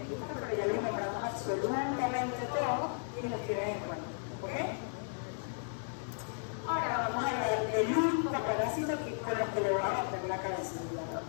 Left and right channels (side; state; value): right; silent; digital silence